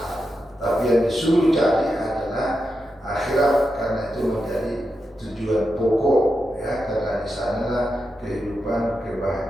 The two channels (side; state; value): both; normal; correlation 0.88